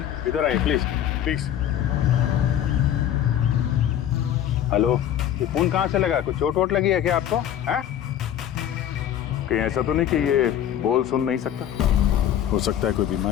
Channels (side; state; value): right; quieter; 10.6 dB